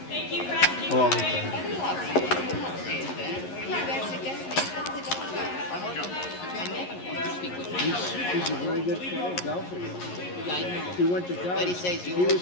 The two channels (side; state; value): right; late; 11 ms